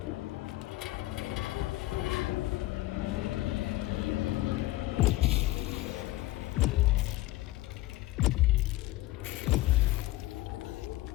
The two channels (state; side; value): quieter; right; 17.5 dB